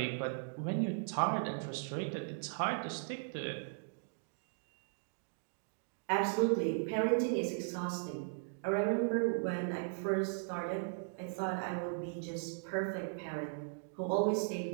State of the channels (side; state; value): left; silent; digital silence